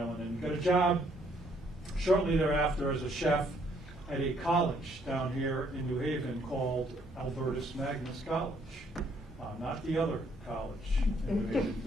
and got a job shortly thereafter as a chef at a college down here in New Haven called Albertus Magnus College. Not the other college in New Haven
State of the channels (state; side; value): normal; both; correlation 0.67